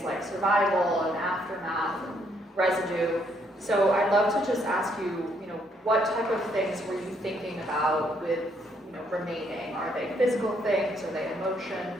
like survival and aftermath and residue. So I'd love to just ask you, you know, what type of things were you thinking about with, you know, remaining? Are they physical things? Are they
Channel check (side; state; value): both; normal; correlation 0.71